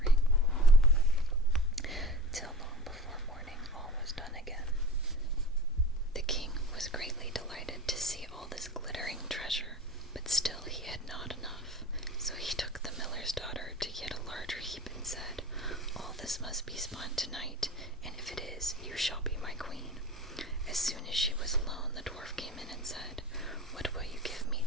Till long before morning all was done again. The king was greatly delighted to see all this glittering treasure, but still he had not enough. So he took the miller's daughter to yet a larger heap and said, "All this must be spun tonight, and if it is, you shall be my queen." As soon as she was alone, the dwarf came in and said, "What will you give me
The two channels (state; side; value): normal; both; correlation 0.36